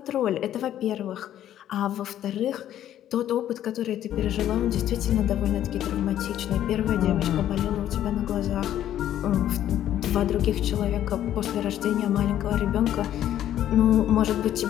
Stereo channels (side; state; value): right; quieter; 11.6 dB